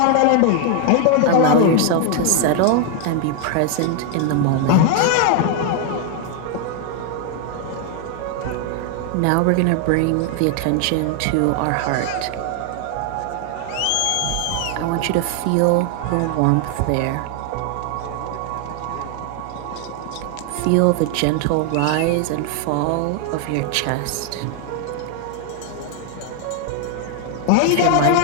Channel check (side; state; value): both; different; correlation 0.00